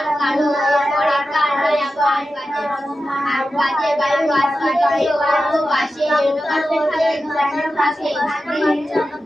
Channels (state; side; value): normal; both; correlation 0.92